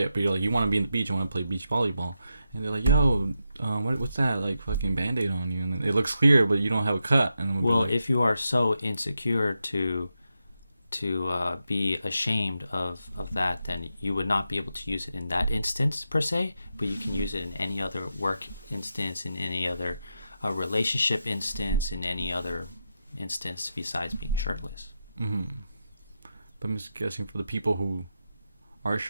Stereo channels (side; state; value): both; inverted; correlation -0.86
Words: but you're like, you want to be in the beach, you want to play beach volleyball, and they're like, "Yo, what's that? Like fucking BandAid on you?" And it looks clear, but you don't have a cut. And well, like, if you are so insecure to be ashamed of that, then you would not be able to use it in that instance per se, but you can use it in any other work instance, in any other relationship instance, in any other instance besides being shirtless. mm-hmm. But I'm just guessing for the people who are